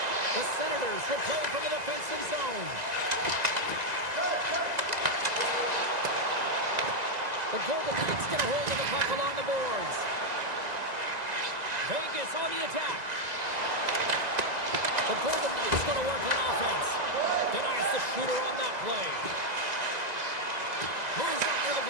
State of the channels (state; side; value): late; left; 2.0 ms